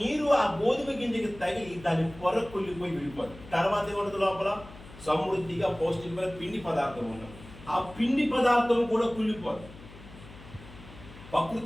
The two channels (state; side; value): noise; left; hum, 18 dB below the sound